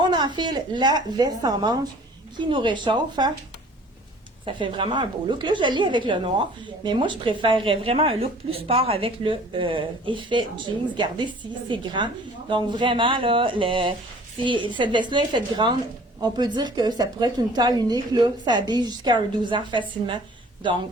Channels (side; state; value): both; normal; correlation 0.50